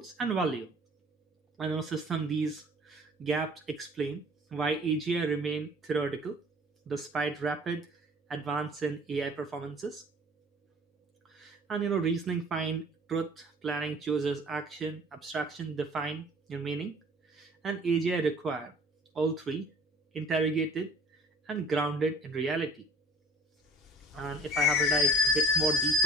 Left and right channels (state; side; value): normal; both; correlation 0.48